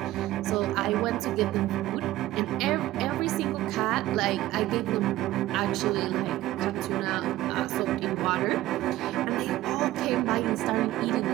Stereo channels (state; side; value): quieter; left; 15.8 dB